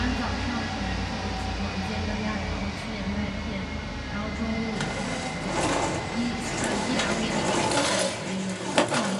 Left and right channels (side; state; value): both; identical; correlation 1.00